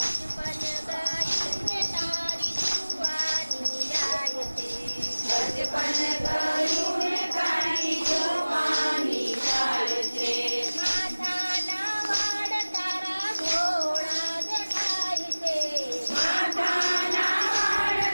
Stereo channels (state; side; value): inverted; both; correlation -1.00